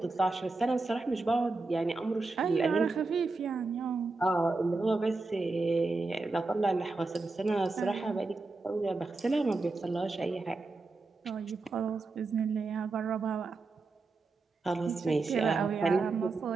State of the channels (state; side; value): quieter; left; 3.6 dB